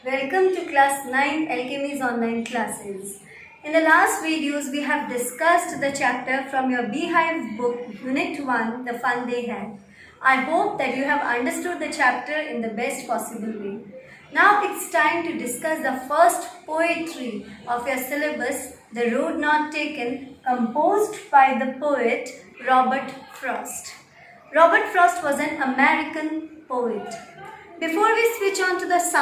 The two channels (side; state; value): both; identical; correlation 1.00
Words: Welcome to Class 9 Alchemy's online classes. In the last videos we have discussed the chapter from your Beehive book Unit 1, The Fun They Had. I hope that you have understood the chapter in the best possible way. Now it's time to discuss the first poetry of your syllabus, The Road Not Taken, composed by the poet Robert Frost. Robert Frost was an American poet. Before we switch on to the